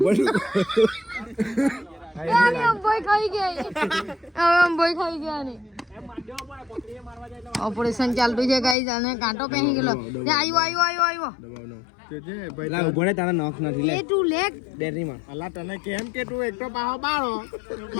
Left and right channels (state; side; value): drops out; right; at 8.8 s